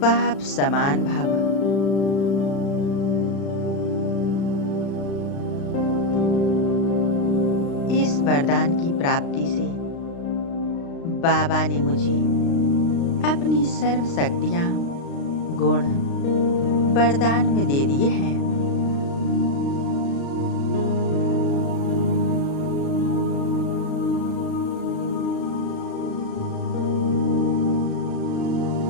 बाप समान भव। इस वरदान की प्राप्ति से बाबा ने मुझे अपनी सर्व शक्तियां गुण वरदान में दे दिए हैं।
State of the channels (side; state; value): right; late; 36 ms